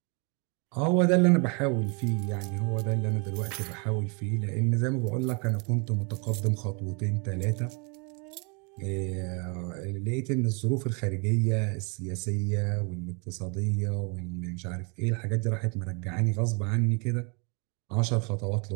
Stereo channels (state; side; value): quieter; left; 34.0 dB